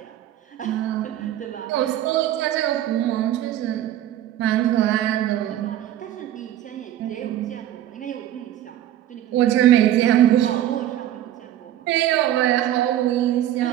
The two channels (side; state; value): left; quieter; 12.3 dB